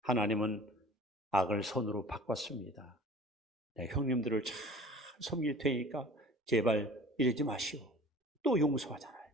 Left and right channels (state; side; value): normal; both; correlation 0.45